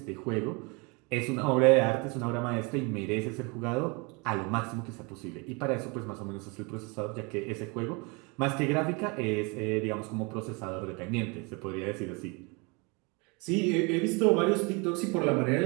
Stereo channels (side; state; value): left; quieter; 29.7 dB